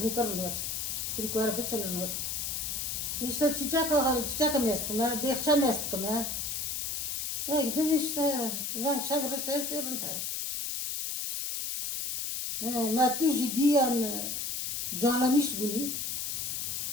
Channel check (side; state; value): left; noise; hiss, 2 dB below the sound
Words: كرنوت كريكو اره بتشن نوت يشتا تشاكا ميست ما بيخشم ميست كما اي قديش فان شاف رشتا يصير انت ما تجي ديان جانا مش بني